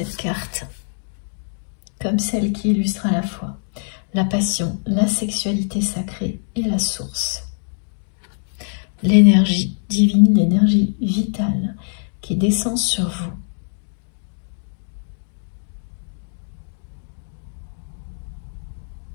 carte comme celle qui illustre à la fois la passion, la sexualité sacrée et la source. L'énergie divine, l'énergie vitale qui descend sur vous.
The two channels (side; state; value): right; silent; digital silence